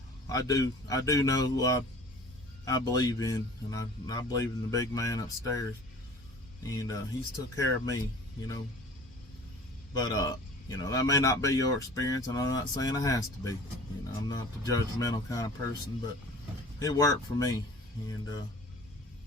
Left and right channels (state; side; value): normal; both; correlation 0.46